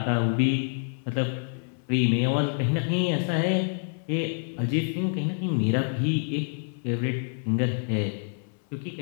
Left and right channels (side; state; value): right; silent; 60 dB below the other